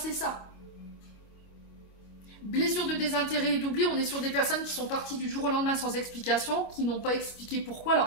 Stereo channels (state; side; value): late; right; 25 ms